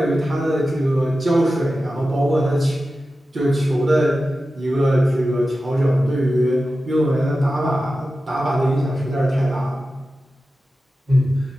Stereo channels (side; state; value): both; normal; correlation 0.93